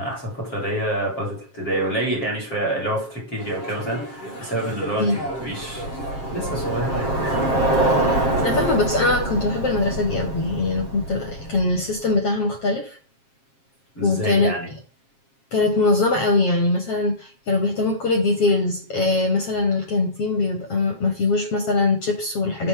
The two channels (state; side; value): late; right; 7.4 ms